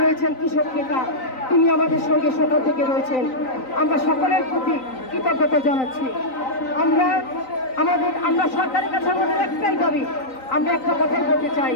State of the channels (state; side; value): late; right; 3.9 ms